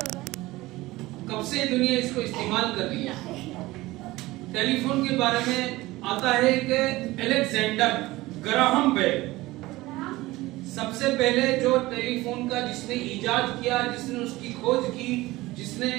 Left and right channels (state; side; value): quieter; left; 19.1 dB